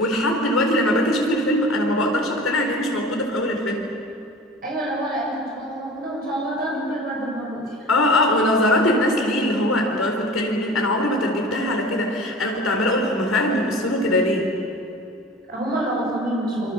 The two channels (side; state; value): both; normal; correlation 0.39